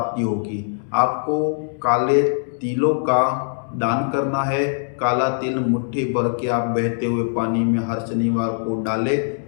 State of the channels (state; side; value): silent; right; digital silence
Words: होगी। आपको काले तिलों का दान करना है। काला तिल मुट्ठी भर के आप बहते हुए पानी में हर शनिवार को डालें,